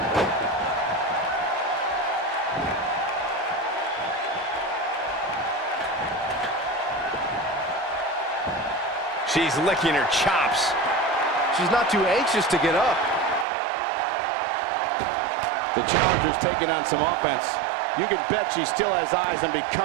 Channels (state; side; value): drops out; left; at 13.5 s